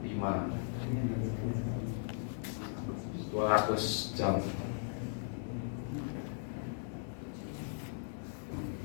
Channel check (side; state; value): right; silent; 53 dB below the other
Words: 5, 200 jam.